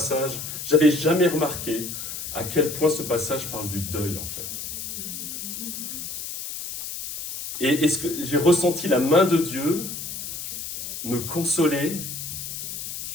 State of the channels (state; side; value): noise; left; hiss, 7 dB below the sound